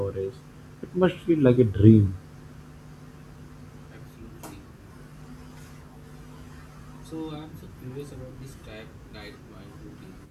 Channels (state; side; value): identical; both; correlation 1.00